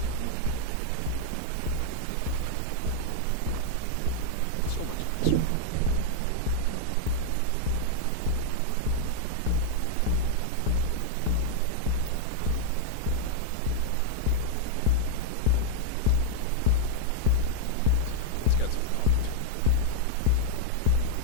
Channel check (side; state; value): both; different; correlation 0.00